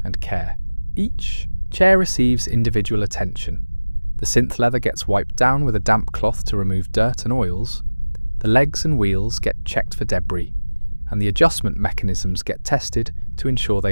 and care. Each chair receives individual attention. The synth leather gets wiped down with a damp cloth to remove dirt and oils. The legs and wheels get checked for debris, and the adjustment mechanisms get tested to ensure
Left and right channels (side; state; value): both; inverted; correlation -1.00